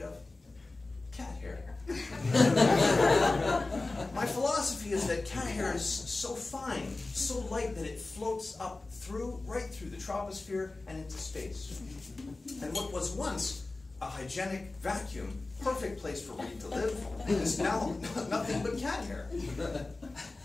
of? Cat hair. My philosophy is that cat hair is so fine, so light, that it floats up right through the troposphere and into space. And what was once a hygienic vacuum, perfect place for Reid to live, is now nothing but cat hair.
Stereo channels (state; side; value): quieter; right; 3.3 dB